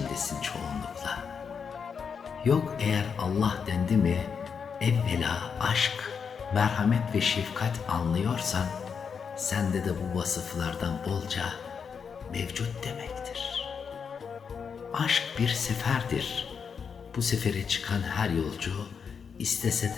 çoğunlukla. Yok eğer Allah dendi mi, evvela aşk, merhamet ve şefkat anlıyorsan, sende de bu vasıflardan bolca mevcut demektir. Aşk bir seferdir. Bu sefere çıkan her yolcu, istese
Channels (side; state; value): right; quieter; 6.3 dB